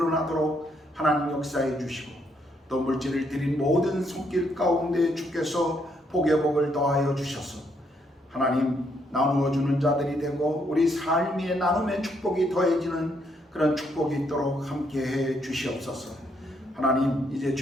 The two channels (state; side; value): normal; both; correlation 0.73